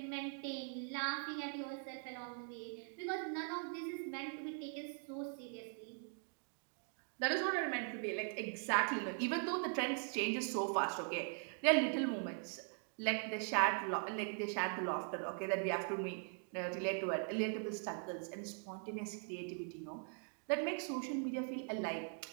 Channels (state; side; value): silent; left; 50 dB below the other